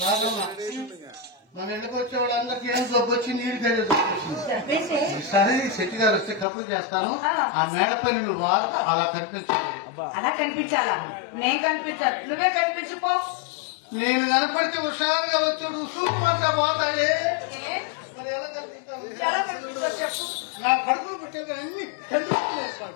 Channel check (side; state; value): right; drops out; at 6.5 s